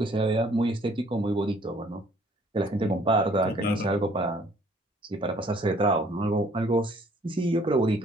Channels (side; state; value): both; normal; correlation 0.59